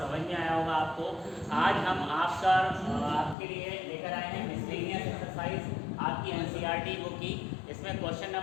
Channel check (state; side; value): drops out; right; at 3.4 s